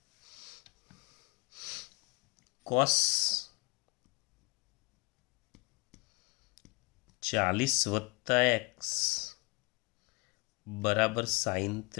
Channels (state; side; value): quieter; right; 27.7 dB